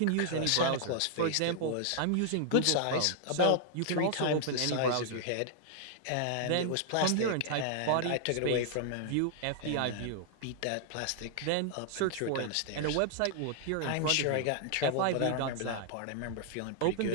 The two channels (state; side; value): different; both; correlation 0.00